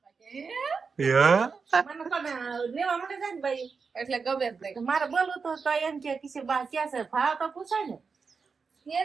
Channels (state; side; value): quieter; left; 5.2 dB